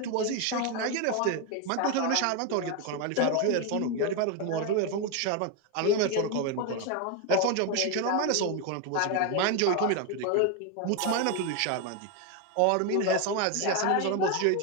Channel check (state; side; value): different; both; correlation 0.02